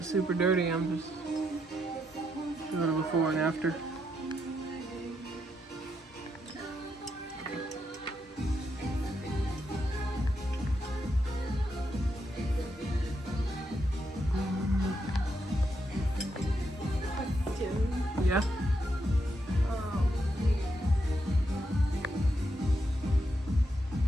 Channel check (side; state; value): both; normal; correlation 0.81